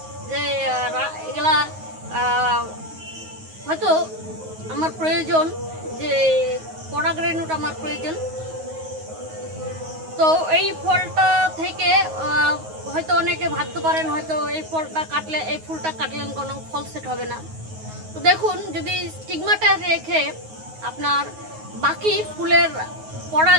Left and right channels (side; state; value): left; late; 9.4 ms